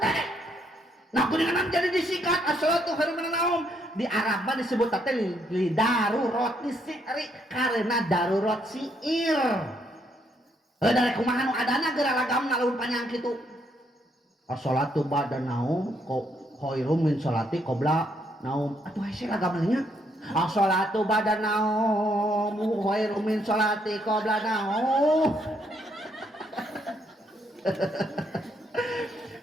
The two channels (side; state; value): both; normal; correlation 0.73